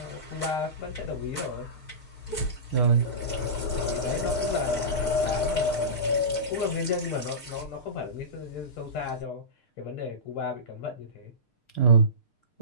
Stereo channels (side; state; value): right; late; 6.6 ms